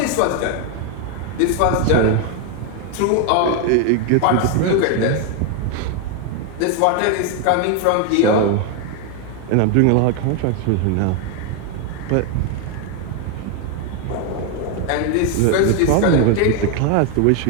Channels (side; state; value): both; different; correlation 0.01